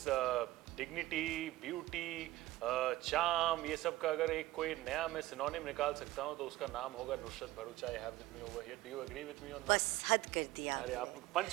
डिग्निटी, ब्यूटी, चार्म, ये सब का अगर एक कोई नया मैं सिनोनिम निकाल सकता हूँ तो उसका नाम होगा Nushrat Bharucha. I have with me over here. Do you agree with me on that? बस हद कर दिया. अरे आप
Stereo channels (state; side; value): quieter; left; 17.1 dB